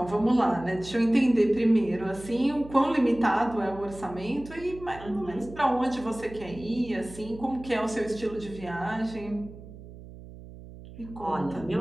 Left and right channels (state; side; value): noise; right; hum, 16 dB below the sound